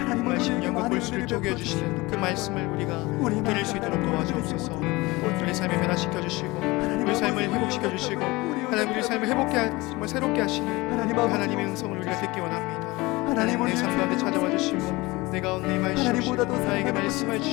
정말 심령과 골수를 쪼개주시는 그 말씀을 우리가 들을 수 있도록 도와주옵소서. 우리 삶을 변화시켜 주시고 우리 삶을 회복시켜 주시고 하나님 우리 삶을 회복해 정말 새롭게 하시는 하나님의 음성을 우리가 듣기 원합니다. 하나님 내 삶 가운데 찾아와 주시고 내 가운데 임하시옵시고 나에게 말씀해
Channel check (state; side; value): quieter; right; 22.0 dB